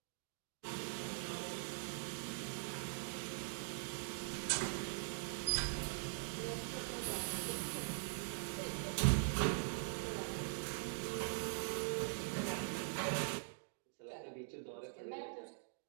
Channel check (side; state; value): left; silent; digital silence